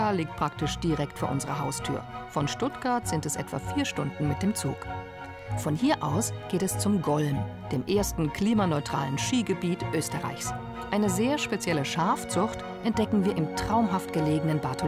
liegt praktisch direkt vor unserer Haustür. Von Stuttgart sind es etwa 4 Stunden mit dem Zug. Von hier aus geht es zum Golm, dem ersten klimaneutralen Skigebiet Österreichs. Eine sehr spezielle Schafzucht entdecken wir im traumhaft gelegenen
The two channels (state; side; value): identical; both; correlation 1.00